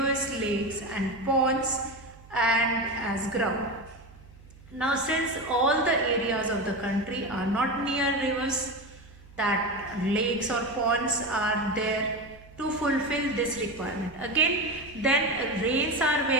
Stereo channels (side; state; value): right; noise; hum, 22 dB below the sound